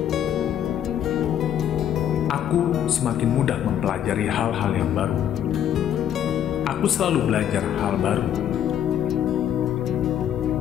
Aku semakin mudah mempelajari hal-hal yang baru. Aku selalu belajar hal baru.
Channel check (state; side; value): quieter; right; 10.1 dB